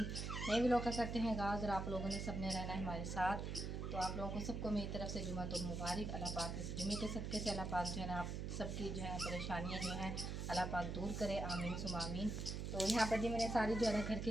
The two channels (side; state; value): right; noise; hum, 3 dB below the sound